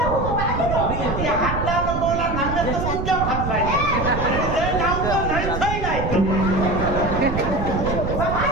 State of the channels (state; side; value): noise; right; rumble, 4 dB below the sound